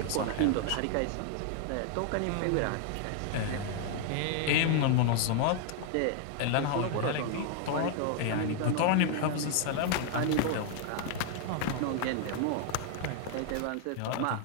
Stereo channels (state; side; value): different; both; correlation 0.00